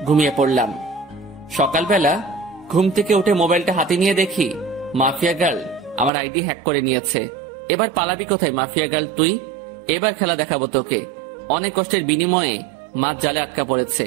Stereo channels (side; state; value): left; drops out; at 6.1 s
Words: ঘুমিয়ে পড়লাম। সকালবেলা ঘুম থেকে উঠে মোবাইলটা হাতে নিয়ে দেখি মাফিয়া গার্ল আমার আইডি হ্যাক করে নিয়েছে। এবার পালাবি কোথায় মাফিয়া গার্ল তুই? এবার খেলা দেখাবো তোকে। অনেক কষ্টের বিনিময়ে মাছ জালে আটকা পড়েছে।